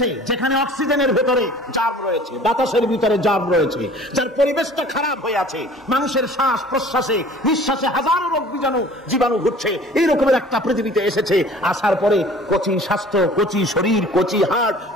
যেখানে অক্সিজেনের ভেতরে জার্ম রয়েছে, বাতাসের ভিতরে জার্ম রয়েছে, যার পরিবেশটা খারাপ হয়ে আছে, মানুষের শ্বাস প্রশ্বাসে নিঃশ্বাসে হাজারো রোগ জীবাণু ঘুরছে। এই রকমের একটা পৃথিবীতে এসেছে। আসার পরে কচি স্বাস্থ্য, কচি শরীর, কচি হার্ট,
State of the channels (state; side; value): normal; both; correlation 0.48